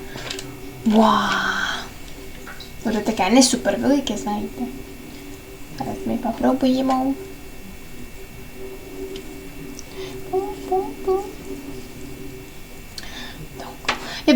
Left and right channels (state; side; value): identical; both; correlation 1.00